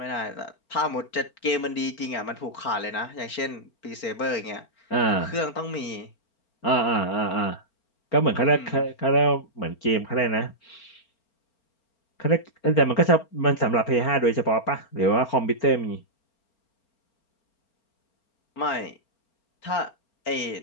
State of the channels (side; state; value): right; late; 4.4 ms